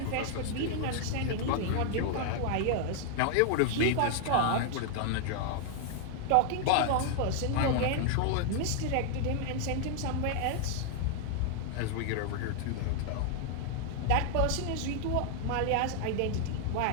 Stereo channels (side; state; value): both; different; correlation 0.00